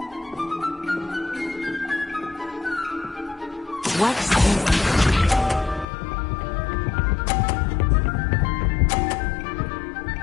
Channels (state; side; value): drops out; right; at 5.9 s